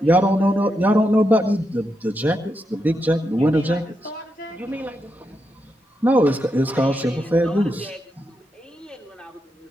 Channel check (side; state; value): both; normal; correlation 0.84